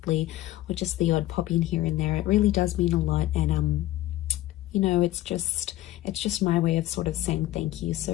or just the odd pop in here and there. It really does mean a lot. And you know, it's just my way of sort of saying thank you.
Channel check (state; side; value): quieter; right; 15.3 dB